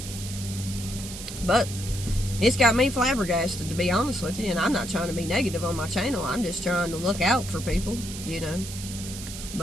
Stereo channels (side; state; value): right; noise; hiss, 10 dB below the sound